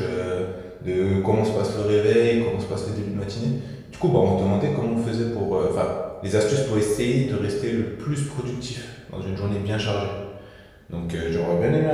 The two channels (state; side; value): identical; both; correlation 1.00